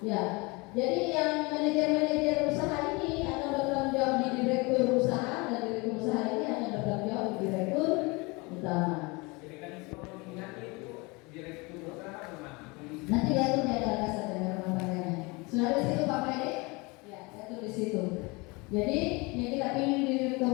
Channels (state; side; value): quieter; right; 26.5 dB